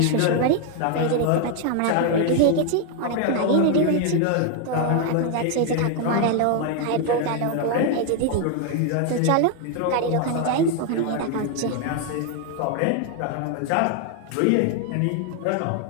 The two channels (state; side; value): different; both; correlation 0.01